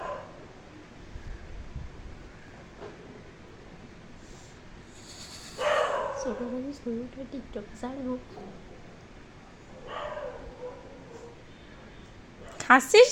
ছোটবেলায় ছবিটা টিকটক ছাড়বো। হাসছিস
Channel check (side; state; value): both; identical; correlation 1.00